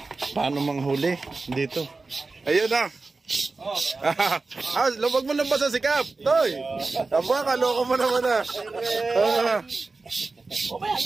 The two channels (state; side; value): quieter; left; 3.7 dB